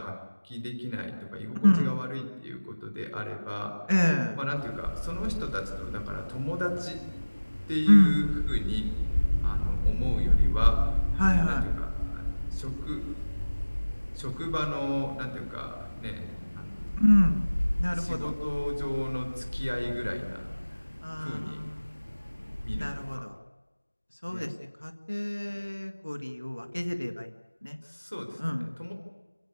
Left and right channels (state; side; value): inverted; both; correlation -1.00